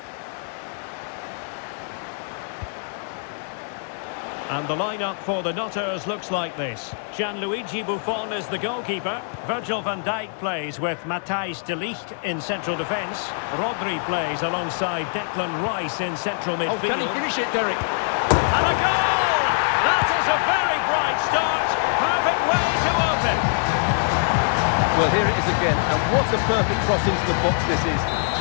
And the lineup for the Nutters looks like this. Gianluigi Buffon is the goalkeeper. Virgil van Dijk plays with Matthijs de Ligt in central defence. Rodri plays alongside Declan Rice in central midfield. Oh, can he finish it, Derek? And a goal! That is a very bright start. Perfect way to open. Well, here it is again, and what a perfect cross into the box this is.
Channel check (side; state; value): right; silent; 63 dB below the other